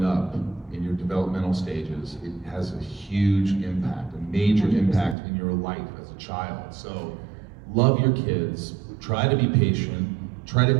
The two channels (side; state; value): left; drops out; at 5.2 s